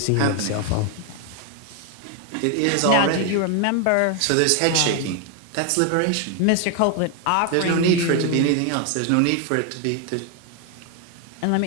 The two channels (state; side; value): different; both; correlation 0.01